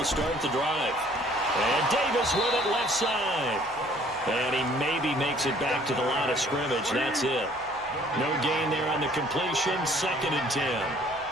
start the drive. And Davis with it left side. And he maybe makes it back to the line of scrimmage. That's it. No gain there on the completion, 2nd and 10.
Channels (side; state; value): right; noise; hum, 24 dB below the sound